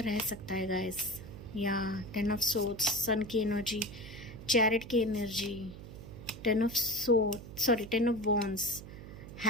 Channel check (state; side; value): noise; right; hum, 13 dB below the sound